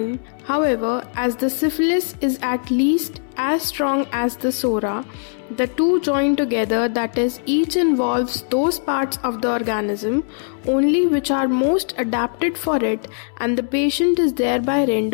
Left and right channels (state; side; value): silent; right; 65 dB below the other